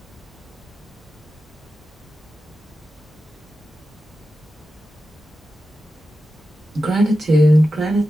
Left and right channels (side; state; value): both; normal; correlation 0.92